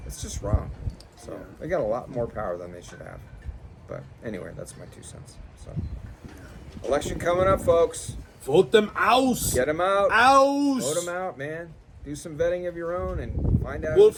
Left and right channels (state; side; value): identical; both; correlation 1.00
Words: It's just wrong. So Yeah. they got a lot more power than they should have. But anyway, that's my 2 cents. So election coming up, folks. Vote them out. Get them out. Out. Vote them out, man. Do some vetting of your own and find out